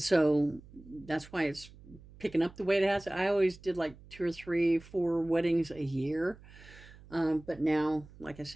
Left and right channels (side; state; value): right; noise; hum, 21 dB below the sound